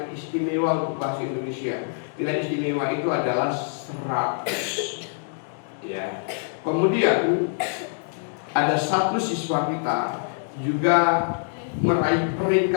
istimewa untuk bahasa Indonesia. Nilai istimewa itu adalah 100. Ya. Kemudian ada satu siswa kita juga meraih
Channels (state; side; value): silent; right; digital silence